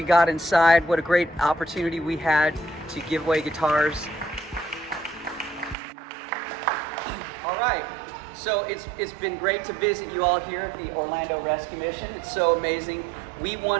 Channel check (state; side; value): drops out; left; at 5.8 s